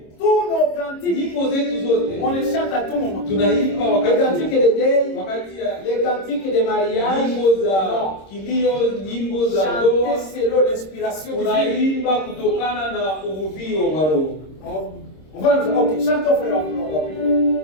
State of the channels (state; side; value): late; right; 26 ms